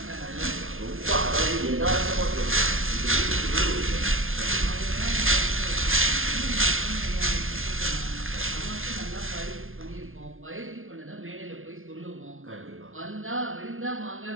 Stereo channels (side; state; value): left; late; 0.60 ms